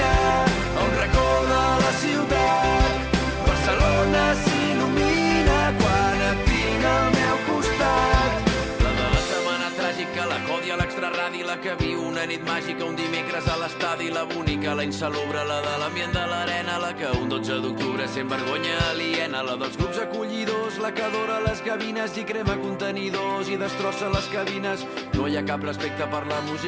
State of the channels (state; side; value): identical; both; correlation 1.00